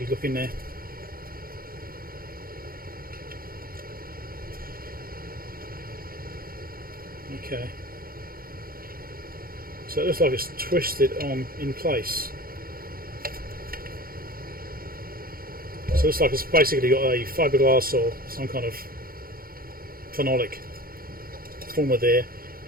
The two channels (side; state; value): left; late; 0.42 ms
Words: look in there. Okay. So it looks like it's twisted on in place. So it looks like it's basically got a fiberglass or some kind of phenolic former there,